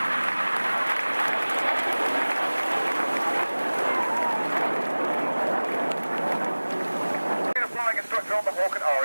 Flying instructor on the Hawk at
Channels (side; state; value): both; inverted; correlation -1.00